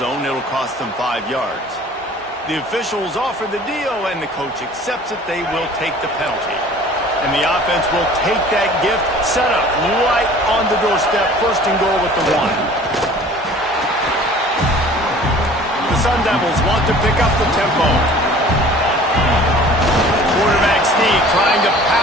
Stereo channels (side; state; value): both; normal; correlation 0.48